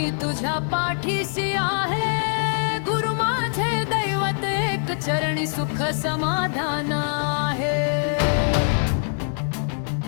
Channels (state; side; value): silent; right; digital silence